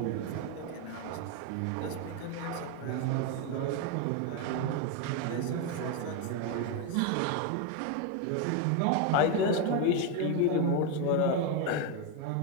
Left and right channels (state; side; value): different; both; correlation 0.02